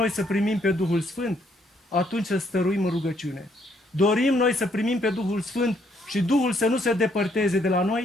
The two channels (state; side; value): normal; both; correlation 0.70